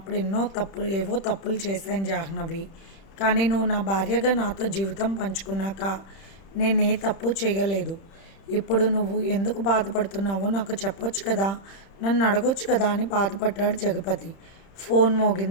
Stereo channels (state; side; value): late; right; 30 ms